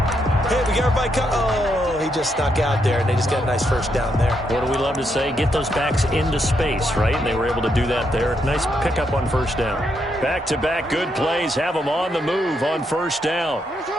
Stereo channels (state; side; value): normal; both; correlation 0.79